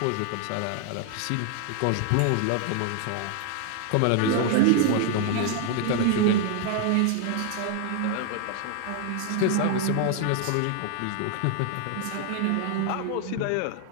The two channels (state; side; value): different; both; correlation 0.00